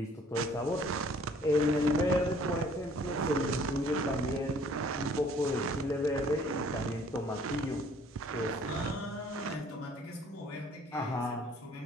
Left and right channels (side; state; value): both; normal; correlation 0.57